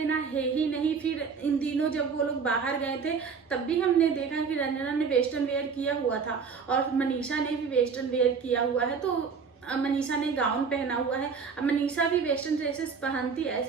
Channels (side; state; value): left; quieter; 5.7 dB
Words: है ही नहीं। फिर इन दिनों जब वो लोग बाहर गए थे तब भी हमने देखा कि रंजना ने वेस्टर्न वेयर किया हुआ था और मनीषा ने भी वेस्टर्न वेयर किया हुआ है। तो मनीषा ने गाउन पहना हुआ है। अब मनीषा भी वेस्टर्न ड्रेसेस पहनती है,